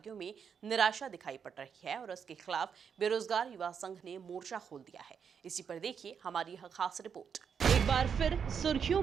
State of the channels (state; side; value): quieter; left; 7.0 dB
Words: में निराशा दिखाई पड़ रही है और उसके खिलाफ बेरोजगार युवा संघ ने मोर्चा खोल दिया है। इसी पर देखिए हमारी यह खास रिपोर्ट। एक बार फिर सुर्खियों